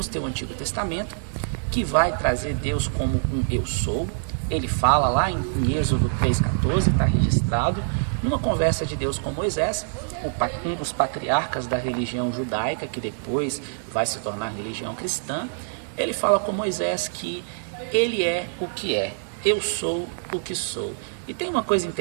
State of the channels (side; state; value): left; silent; digital silence